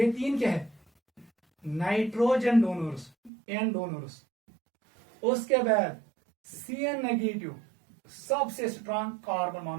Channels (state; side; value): drops out; left; at 3.3 s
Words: तीन क्या है नाइट्रोजन डोनर्स, N डोनर्स। उसके बाद CN नेगेटिव, सबसे स्ट्रांग कार्बन